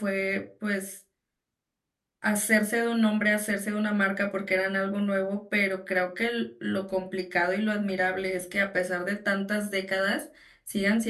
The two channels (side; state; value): both; identical; correlation 1.00